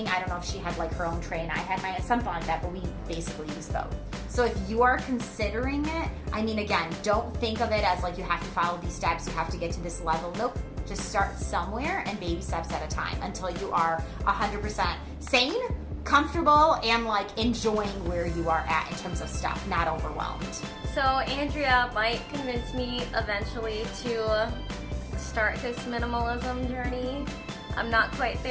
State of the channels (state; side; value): identical; both; correlation 1.00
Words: I don't know if she had like her own tray and I had mine, something like that, but we basically used both. So if you are considering it, I mean, again, don't think of it as like you have to follow these steps, you have to get to this level. Nope. Just start somewhere and baby steps at a time until you are 100% sane, comfortable, and like enjoying where you are at in terms of stuff, not overwhelmed. So Andrea might convince me eventually to start this minimalism journey. I'm not quite